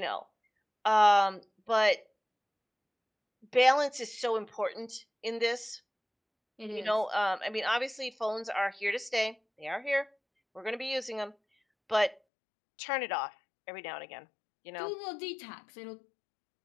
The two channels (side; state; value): right; drops out; at 12.2 s